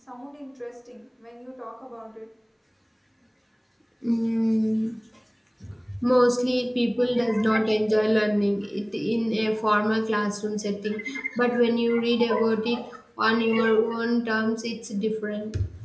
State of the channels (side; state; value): both; identical; correlation 1.00